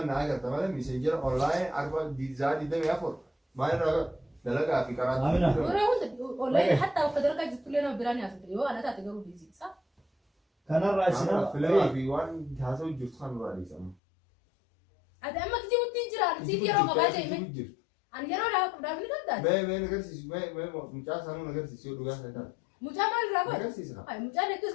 naa agarta malee messenjera online arba diizaa diidamii afur maal irraa dalagaa fi karaa. Kanarraa isin filamaa fi waan haasa'u jirtu kan irraa dhiisamu. Ati amma kijibuttiin jiraan siif yeroo qabaa jee ani yeroo dhaaf ni qabdaa. Mee nagarsiisu mee mucaa sanuu nagarsiisu yoo dhugaa isaa Mucaa maal irraa godhe? nagarsiisi haa. Mucaan hedduu as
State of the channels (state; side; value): drops out; right; at 14.0 s